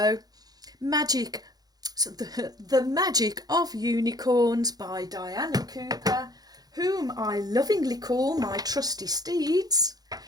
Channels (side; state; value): left; late; 0.19 ms